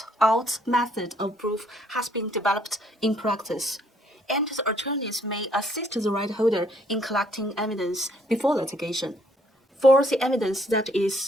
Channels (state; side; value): normal; both; correlation 0.65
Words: out method of proof has been developed in practice, and the attorneys may assist the right holder in collecting evidence before litigation. For the evidence that